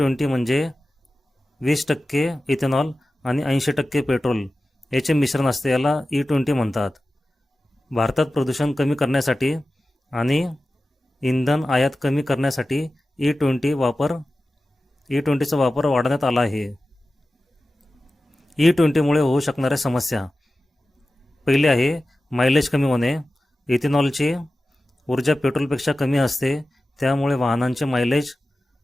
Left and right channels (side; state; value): both; normal; correlation 0.95